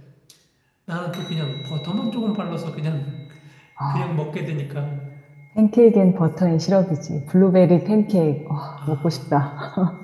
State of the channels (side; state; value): both; identical; correlation 1.00